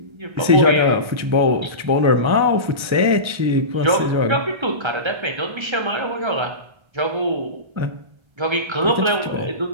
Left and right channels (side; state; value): left; late; 1.3 ms